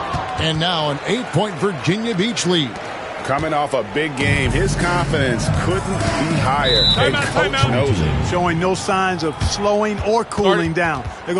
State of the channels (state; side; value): identical; both; correlation 1.00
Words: And now an 8-point Virginia Beach lead. Coming off a big game, his confidence couldn't be higher. And coach knows it. Showing no signs of slowing or cooling down. They're